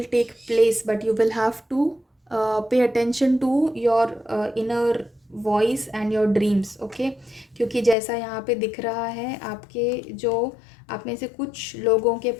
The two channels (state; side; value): drops out; right; at 8.0 s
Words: take place, but you will have to pay attention to your inner voice and your dreams, okay. क्योंकि जैसा यहाँ पे दिख रहा है, आपके जो आप में से कुछ लोगों के